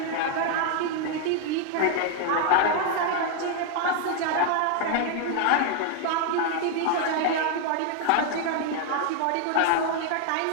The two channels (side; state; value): both; different; correlation 0.00